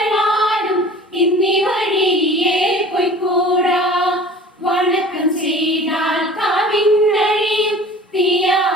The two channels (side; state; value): both; normal; correlation 0.43